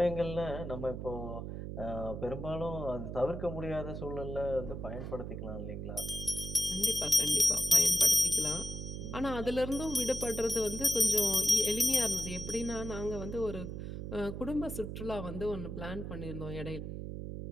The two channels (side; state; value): right; noise; hum, 6 dB below the sound